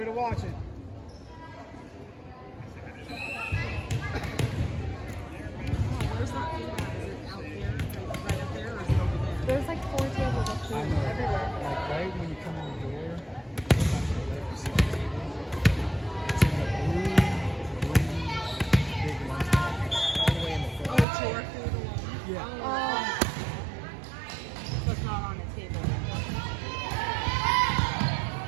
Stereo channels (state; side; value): drops out; left; at 21.1 s